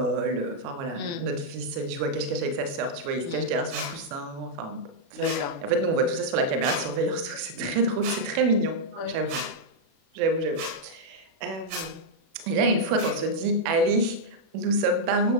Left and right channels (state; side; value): late; left; 36 ms